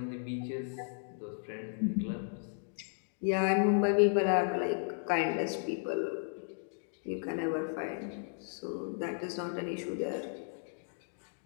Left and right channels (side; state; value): right; silent; digital silence